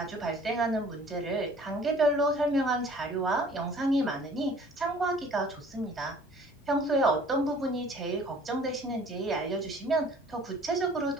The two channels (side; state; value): both; normal; correlation 0.52